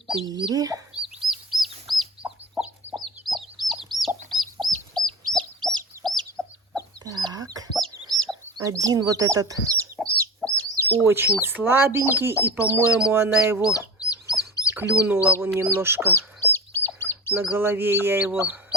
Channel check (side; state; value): both; normal; correlation 0.29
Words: Так. Один вот этот очень слабенький. И, по-моему, она его клюнула. Вон немножко на голове я его